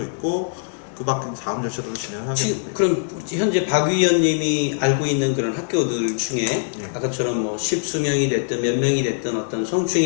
있고 그 밖에 다음 절차들을 진행하겠는데. 그럼 현재 박 위원님이 알고 있는 그런 학교들 중에 아까처럼 뭐 십수명이 됐든 몇 명이 됐든 어떤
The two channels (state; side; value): silent; right; 55 dB below the other